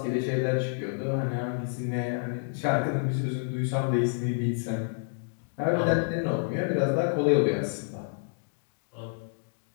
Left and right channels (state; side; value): silent; right; digital silence